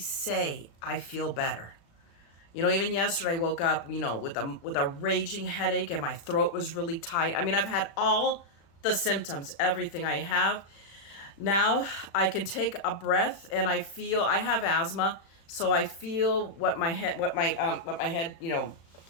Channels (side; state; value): right; late; 36 ms